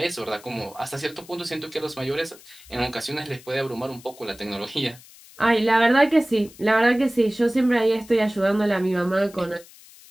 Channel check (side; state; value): left; noise; hiss, 22 dB below the sound